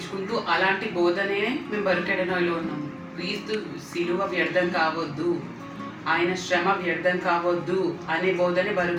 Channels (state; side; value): identical; both; correlation 1.00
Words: అలాంటి బోధనే మేము బరుకెడనాయిలో ఉన్నాము. క్రీస్తు సిలువ వ్యర్థం కావద్దు, ఆయన శ్రమ వ్యర్థం కావద్దు అనే బోధనే